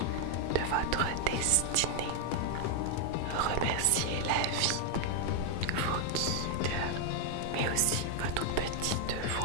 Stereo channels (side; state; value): both; different; correlation 0.00